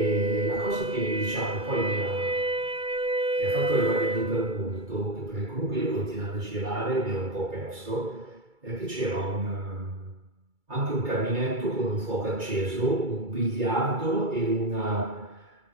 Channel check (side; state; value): left; late; 2.3 ms